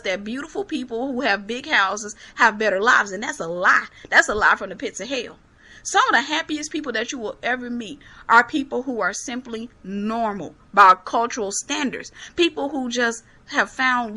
that beautiful people who have big houses have better lives, and that's a lie. That's a lie from the pits of hell. Some of the happiest people that you will ever meet are people who are simply normal by cultural standards. People who just have found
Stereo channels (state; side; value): identical; both; correlation 1.00